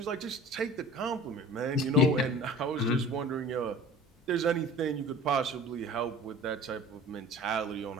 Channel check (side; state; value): both; normal; correlation 0.43